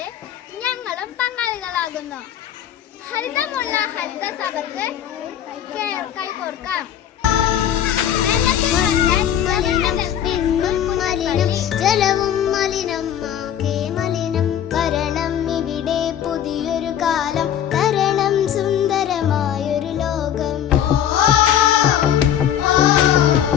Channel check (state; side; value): quieter; right; 10.1 dB